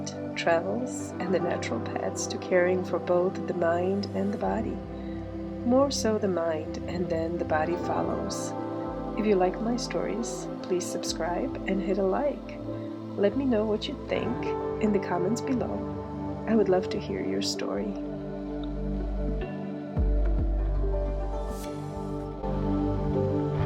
travels, and the natural paths to caring for both the mind and the body. More so the mind, and then the body follows. If you like my stories, please subscribe and hit a like. Let me know what you think in the comments below. I would love to hear your story.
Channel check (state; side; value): identical; both; correlation 1.00